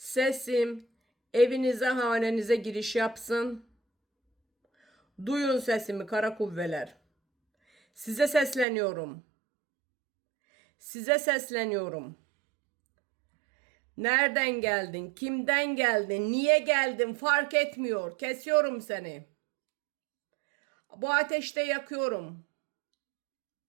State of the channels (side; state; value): left; drops out; at 8.7 s